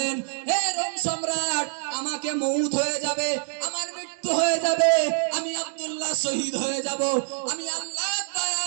হে রোম সম্রাট, আমাকে মউত হয়ে যাবে, আমার মৃত্যু হয়ে যাবে, আমি আব্দুল্লাহ শহীদ হয়ে যাব, আমি আল্লাহর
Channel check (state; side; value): silent; left; digital silence